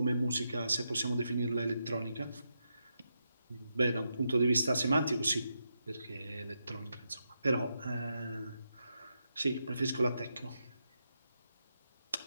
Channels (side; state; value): both; inverted; correlation -0.84